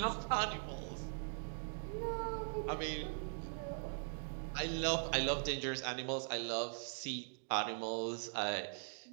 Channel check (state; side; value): silent; left; digital silence